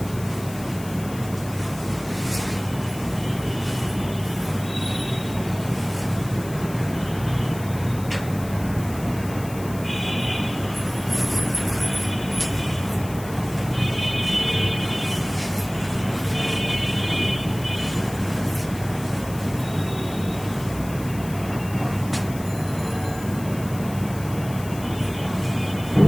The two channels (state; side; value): noise; left; hiss, 16 dB below the sound